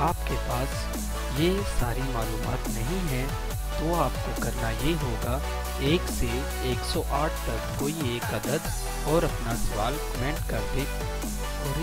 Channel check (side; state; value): both; identical; correlation 1.00